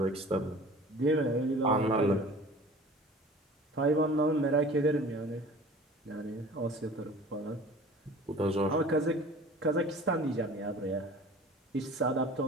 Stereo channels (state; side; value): normal; both; correlation 0.44